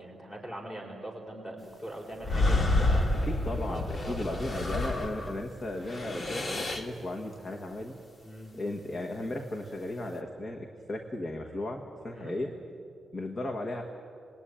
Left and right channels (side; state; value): both; normal; correlation 0.80